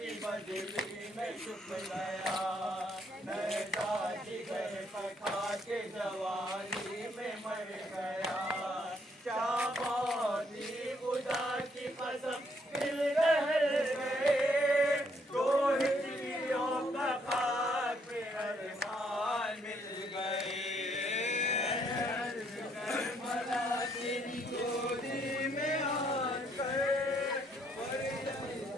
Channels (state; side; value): normal; both; correlation 0.70